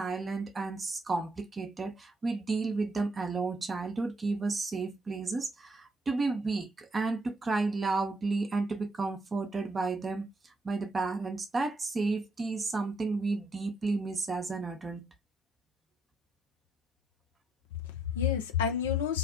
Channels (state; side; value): normal; both; correlation 0.71